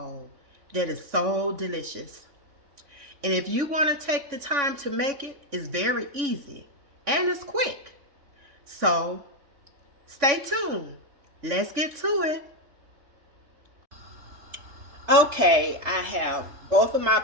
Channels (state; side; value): late; left; 3.6 ms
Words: that is so delicious. And if you want to take the time to make it, it's very easy and it's quick. So stay tuned. Let's get to it. Okay, I have both of my